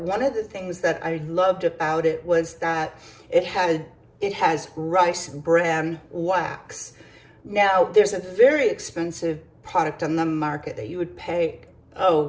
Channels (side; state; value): both; identical; correlation 1.00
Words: one of the things that I loved about it was that it has rice bran wax. Now, there's a very expensive product on the market that you would pay,